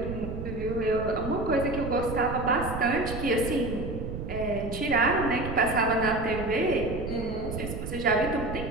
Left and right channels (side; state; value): right; noise; rumble, 7 dB below the sound